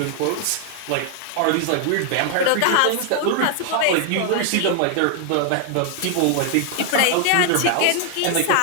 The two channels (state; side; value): different; both; correlation 0.00